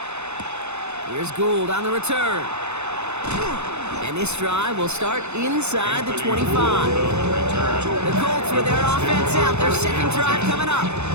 Here's Gould on the return. And this drive will start inside the 25. The Colts with their offense out, their 2nd drive coming up.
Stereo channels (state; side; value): late; left; 0.81 ms